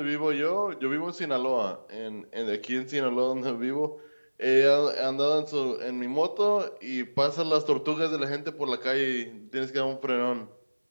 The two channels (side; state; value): both; inverted; correlation -1.00